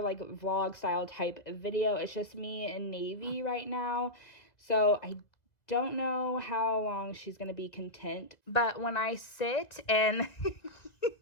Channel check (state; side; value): late; right; 2.0 ms